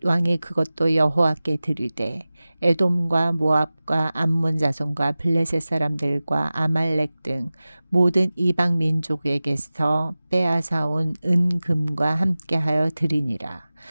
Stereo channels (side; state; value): both; inverted; correlation -0.97